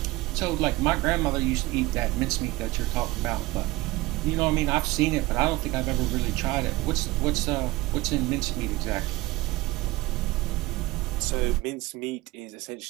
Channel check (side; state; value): left; quieter; 20.3 dB